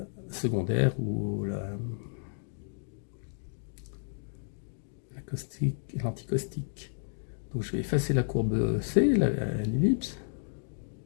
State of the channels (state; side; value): silent; right; digital silence